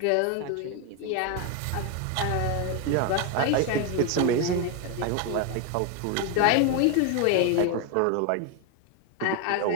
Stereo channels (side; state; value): both; different; correlation 0.01